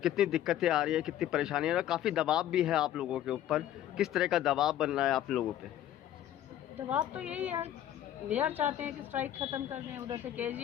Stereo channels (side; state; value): right; quieter; 11.9 dB